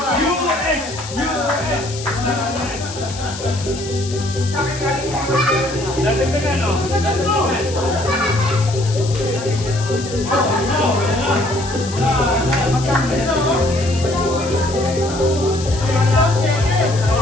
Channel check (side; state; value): left; noise; hiss, 12 dB below the sound